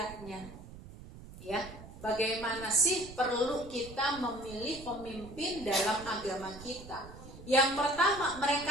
Ya, bagaimana sih perlu kita memilih pemimpin dalam agama kita? Yang pertama,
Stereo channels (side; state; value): right; noise; rumble, 15 dB below the sound